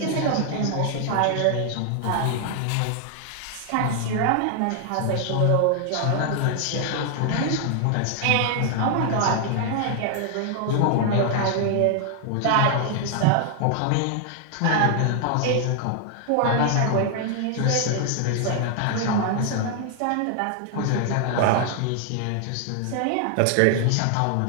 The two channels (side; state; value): both; different; correlation 0.00